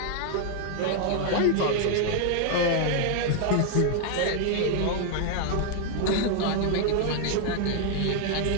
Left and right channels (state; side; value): different; both; correlation 0.00